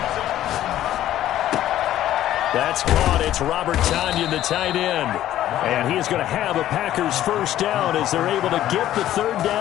That's caught. It's Robert Tonyan, the tight end. And he is going to have a Packers first down as they're able to get the 3rd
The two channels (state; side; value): quieter; right; 12.8 dB